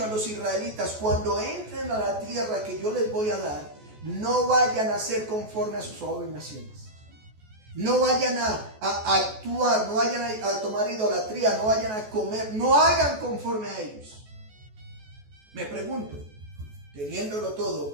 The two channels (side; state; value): left; late; 14 ms